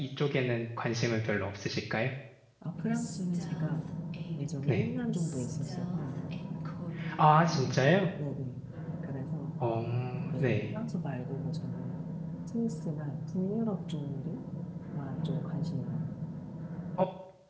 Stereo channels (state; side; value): identical; both; correlation 1.00